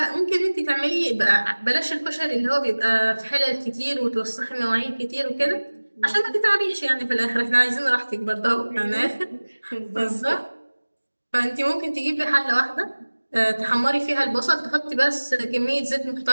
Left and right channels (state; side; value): inverted; both; correlation -1.00